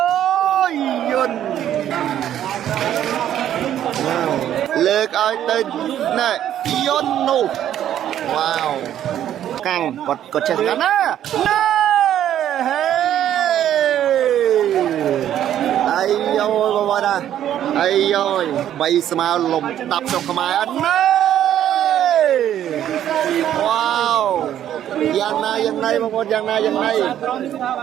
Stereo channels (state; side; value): quieter; left; 11.0 dB